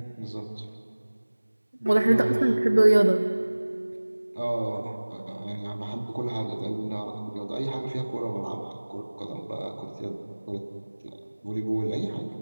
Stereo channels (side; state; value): both; inverted; correlation -1.00